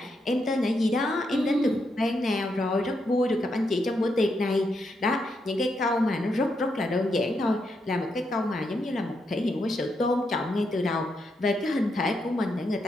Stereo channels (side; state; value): both; normal; correlation 0.81